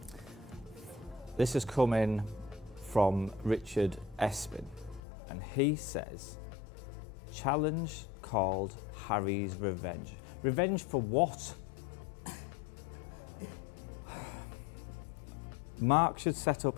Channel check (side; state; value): right; drops out; at 5.0 s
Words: This has come in from Richard Espin, and he says, challenge called Harry's Revenge. Revenge for what? Mark should set up